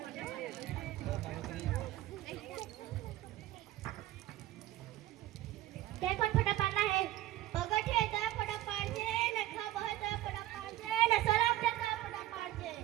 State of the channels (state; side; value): quieter; left; 14.8 dB